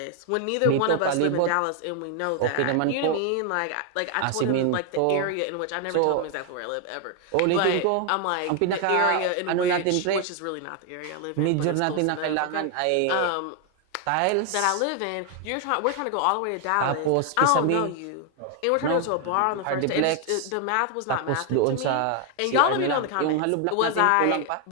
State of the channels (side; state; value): both; different; correlation 0.00